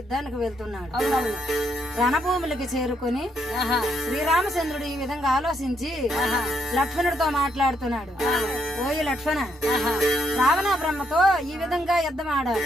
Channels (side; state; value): both; normal; correlation 0.75